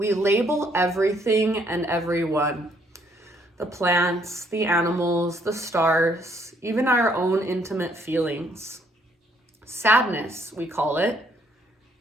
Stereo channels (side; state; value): both; normal; correlation 0.68